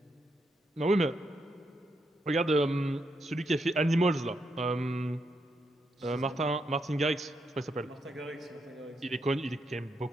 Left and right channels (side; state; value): both; normal; correlation 0.81